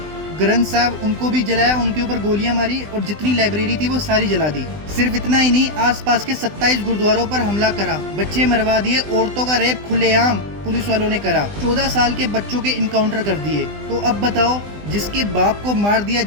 ग्रंथ साहब उनको भी जलाया, उनके ऊपर गोलियां मारी और जितनी लाइब्रेरी थी वो सारी जला दी। सिर्फ इतना ही नहीं, आसपास के 27 गुरुद्वारों पर हमला करा, बच्चे मरवा दिए, औरतों का रेप खुलेआम पुलिस वालों ने करा, 14 साल के बच्चों के इनकाउंटर कर दिए। तो अब बताओ, जिसके बाप को मार दिया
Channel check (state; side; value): late; left; 20 ms